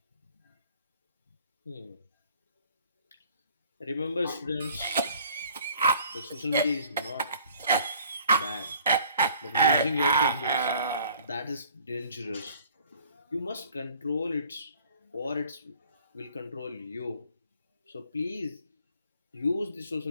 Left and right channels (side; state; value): both; inverted; correlation -0.55